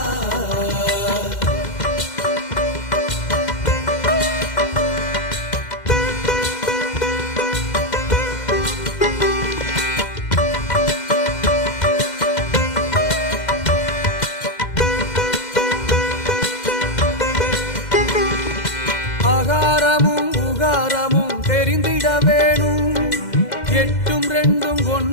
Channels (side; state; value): right; late; 2.0 ms